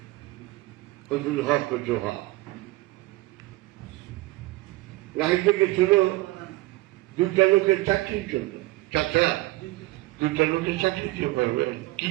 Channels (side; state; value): left; quieter; 19.7 dB